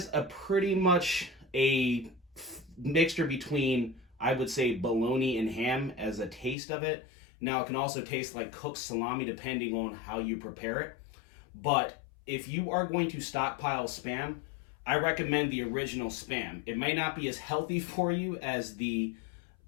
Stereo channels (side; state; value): right; drops out; at 6.6 s